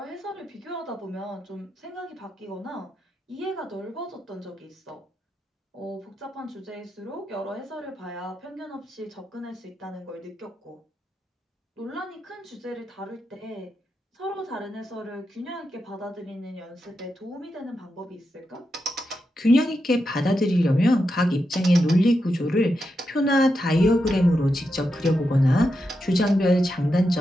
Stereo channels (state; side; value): normal; both; correlation 0.86